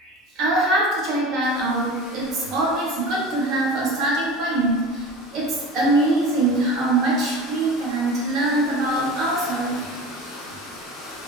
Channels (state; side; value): normal; both; correlation 0.34